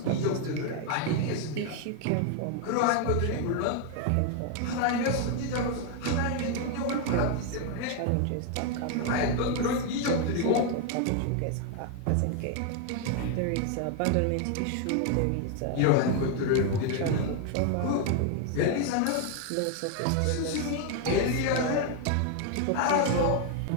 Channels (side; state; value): both; different; correlation 0.00